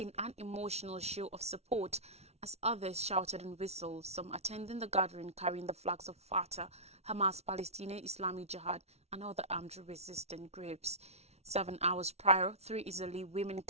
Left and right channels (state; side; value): late; left; 0.31 ms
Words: an emotional show of support, as others shouted and whistled, some attending the gathering carrying the flags of Fatah, Hamas, Palestinian Islamic Jihad, and other armed resistance groups. 7 hours prior, 3 Israeli women